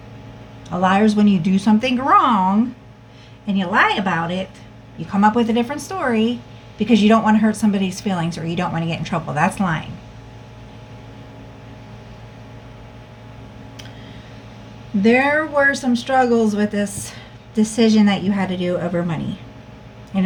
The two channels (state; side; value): identical; both; correlation 1.00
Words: A liar is when you do something wrong and you lie about it. You come up with a different story because you don't want to hurt somebody's feelings or you don't want to get in trouble. That's lying. There were some struggles with this decision that you had to do over money,